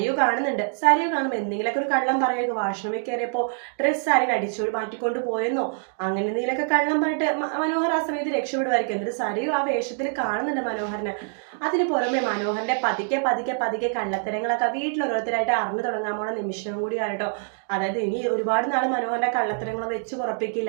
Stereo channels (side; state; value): left; silent; digital silence